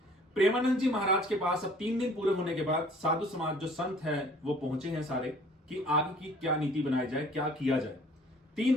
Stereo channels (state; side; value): normal; both; correlation 0.53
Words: प्रेमानंद जी महाराज के पास अब 3 दिन पूरे होने के बाद साधु समाज जो संत है वो पहुंचे हैं सारे, कि आगे की क्या नीति बनाई जाए, क्या किया जाए।